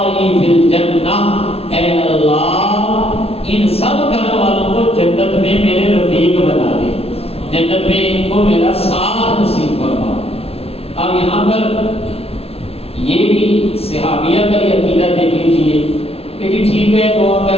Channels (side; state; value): right; late; 0.29 ms